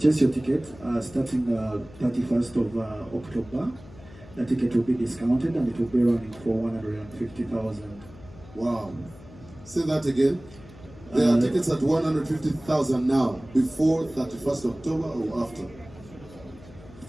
your ticket, starting 31st of October, the ticket will be discounted and it will be running for 150,000. Wow. Say that again. There are tickets at 150,000 now, before 31st October or after?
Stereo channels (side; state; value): left; noise; hum, 20 dB below the sound